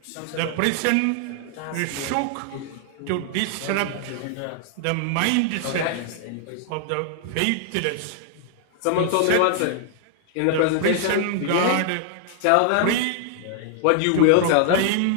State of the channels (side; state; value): both; different; correlation -0.01